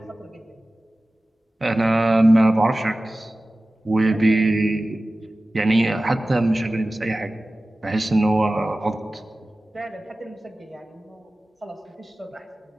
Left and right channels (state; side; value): normal; both; correlation 0.96